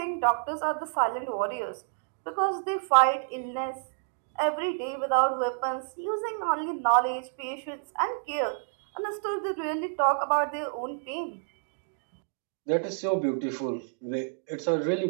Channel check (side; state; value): left; silent; digital silence